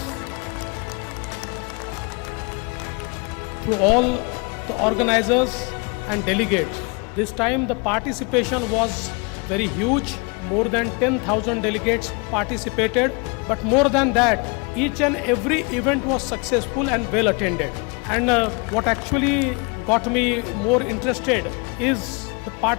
to all the organizers and delegates. This time the participation was very huge. More than 10,000 delegates participated. But more than that, each and every event was successful and well attended. And what actually got me more interested is the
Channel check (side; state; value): right; quieter; 31.3 dB